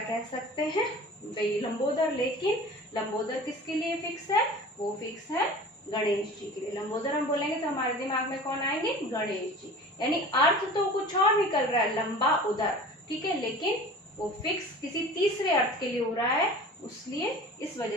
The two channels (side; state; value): both; normal; correlation 0.40